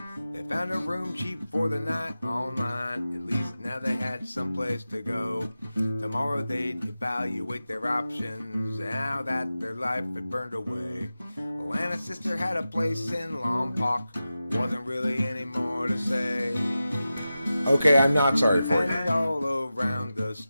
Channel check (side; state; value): both; inverted; correlation -0.93